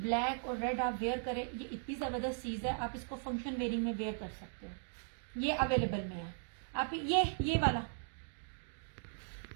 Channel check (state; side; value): silent; left; digital silence